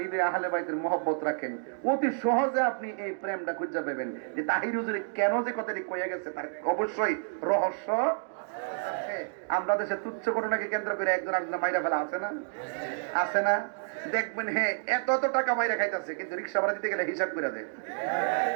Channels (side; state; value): left; silent; digital silence